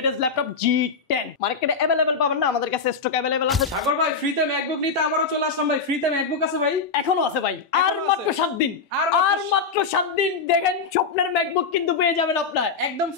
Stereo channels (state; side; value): quieter; right; 4.9 dB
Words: ল্যাপটপ G10 মার্কেটে अवेलेबल পাবেন না আমাদের কাছে স্টক अवेलेबल আছে সাগর ভাই ফ্রিতে ম্যাকবুক নিতে আবারও চলে আসলাম ভাই ফ্রিতে ম্যাকবুক আছে ভাই এখনো আছে ভাই আর মাত্র 7 দিন আর মাত্র 7 দিন দেখেন স্বপ্নের ম্যাকবুক কিন্তু পেয়ে যাবেন আপনারা একদম